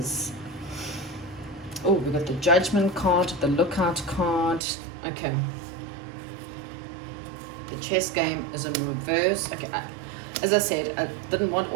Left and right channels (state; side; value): drops out; left; at 4.6 s